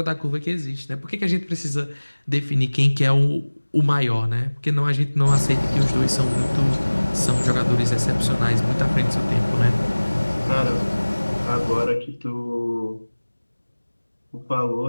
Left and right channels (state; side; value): inverted; both; correlation -1.00